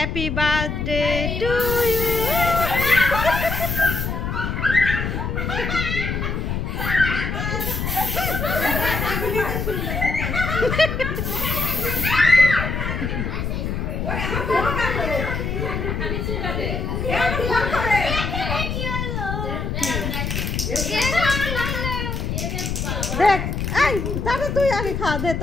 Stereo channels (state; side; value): noise; left; rumble, 2 dB below the sound